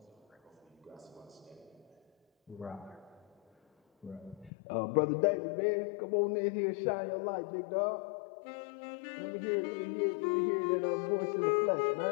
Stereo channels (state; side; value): drops out; right; at 4.5 s